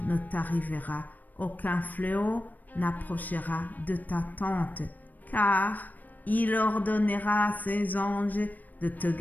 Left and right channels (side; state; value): right; late; 0.084 ms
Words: ne t'arrivera, aucun fléau n'approchera de ta tente. Car il ordonnera à ses anges de te